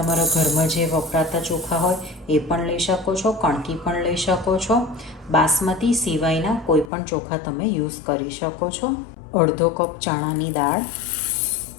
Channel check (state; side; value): drops out; right; at 6.9 s